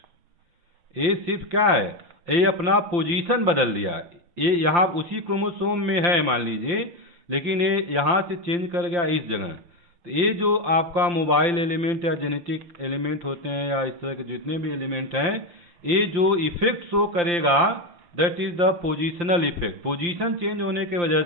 ये सिर्फ क्या है, ये अपना पोजीशन बदल दिया। ये यहाँ उसी क्रोमोसोम में है मान लीजिए, लेकिन ये यहाँ से चेंज कर गया इस जगह। तो ये जो आपका मोबाइल एलिमेंट या जेनेटिक एलिमेंट होते हैं या इस तरह के जितने भी एलिमेंट हैं, ये जो इफेक्ट शो करेगा that is the positional effect. Position change होने की वजह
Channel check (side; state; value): left; late; 5.8 ms